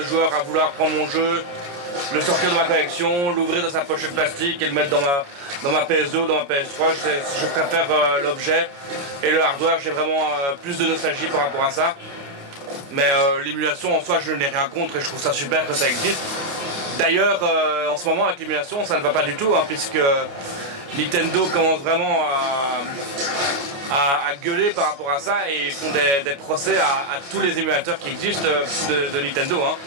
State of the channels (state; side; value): late; left; 28 ms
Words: joueur à vouloir prendre mon jeu, le sortir de ma collection, l'ouvrir dans sa pochette plastique et le mettre dans ma PS2 ou dans ma PS3. Je préfère l'objet et le hardware, j'ai vraiment plus de nostalgie par rapport à ça. Mais l'émulation en soi je n'ai rien contre et je trouve ça super que ça existe. D'ailleurs en ce moment avec l'émulation ça ne va pas du tout hein, puisque Nintendo commence vraiment à gueuler par rapport à ça et ils font des procès à tous les émulateurs qui existent de Nintendo. Hein.